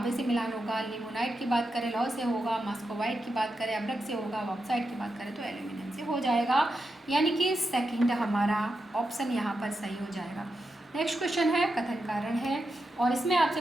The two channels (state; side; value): normal; both; correlation 0.87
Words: से मिलान होगा, लिमोनाइट की बात करें लौह से होगा, मस्कोवाइट की बात करें अब्रक से होगा, बॉक्साइट की बात करें तो एल्यूमिनियम से हो जाएगा, यानी कि सेकंड हमारा ऑप्शन यहाँ पर सही हो जाएगा। नेक्स्ट क्वेश्चन है कथन कारण है, और इसमें आपसे